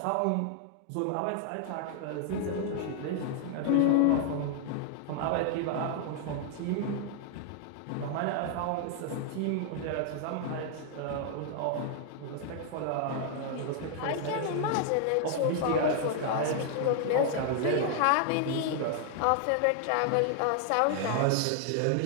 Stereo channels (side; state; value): both; different; correlation 0.00